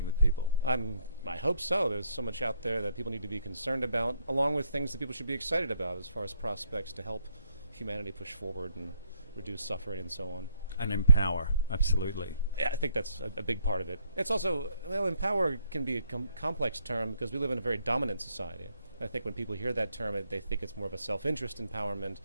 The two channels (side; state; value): both; inverted; correlation -0.70